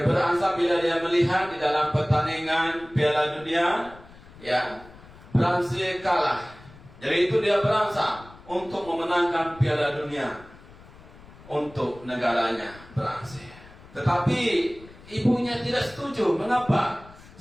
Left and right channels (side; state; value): left; noise; rumble, 21 dB below the sound